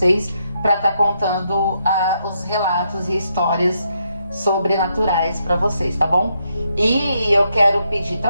para estar contando os relatos e histórias sobrenaturais para vocês, tá bom? E eu quero pedir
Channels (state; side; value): inverted; both; correlation -0.79